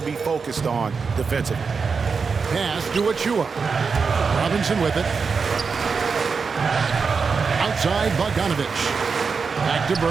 be focused on defensively. Pass to Achua. Robinson with it. Outside Bogdanovic. Back to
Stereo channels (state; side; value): quieter; left; 5.2 dB